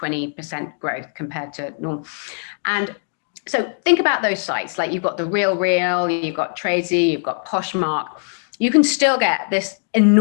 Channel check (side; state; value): right; silent; digital silence